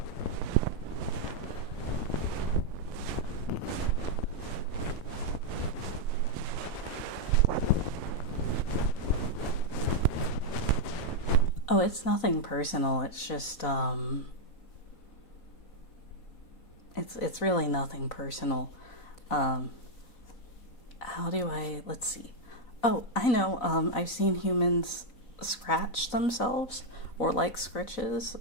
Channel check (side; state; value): right; late; 4.0 ms